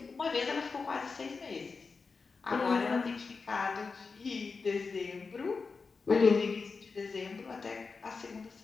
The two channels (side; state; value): right; quieter; 4.6 dB